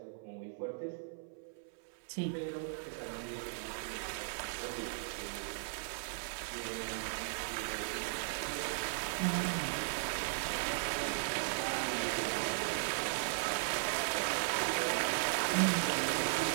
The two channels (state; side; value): silent; left; 53 dB below the other